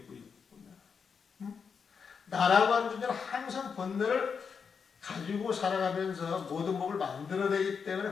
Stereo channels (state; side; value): quieter; right; 6.1 dB